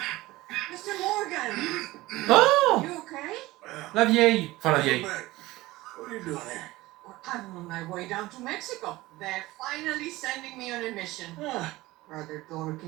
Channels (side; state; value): left; quieter; 18.9 dB